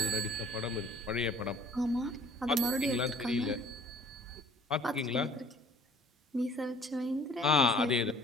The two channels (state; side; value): normal; both; correlation 0.53